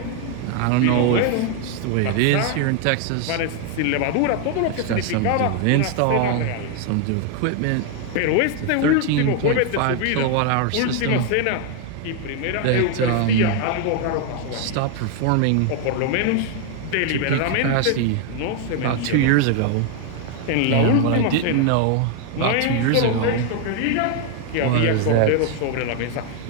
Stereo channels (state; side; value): different; both; correlation 0.00